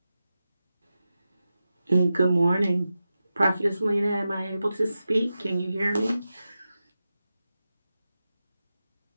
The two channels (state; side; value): inverted; both; correlation -0.92